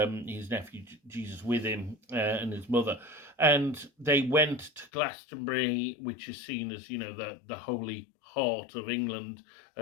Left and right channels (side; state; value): right; drops out; at 4.9 s